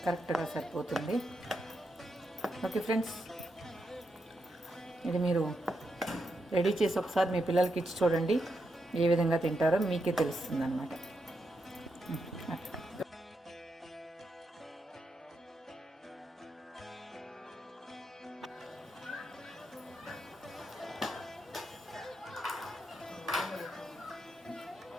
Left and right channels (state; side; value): normal; both; correlation 0.83